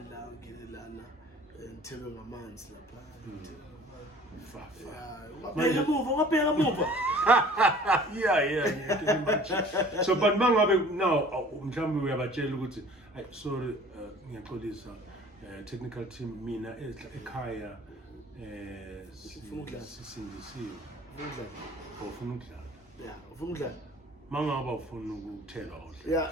Lana, and tell them a man's yeah. So, but now, we have a jail. I sorry, this technical team, Mina, Ekaya, Sindisiyo. Yeah, Funga. Mangaba ufuna ukuthela Yeah,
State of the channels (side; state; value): both; normal; correlation 0.49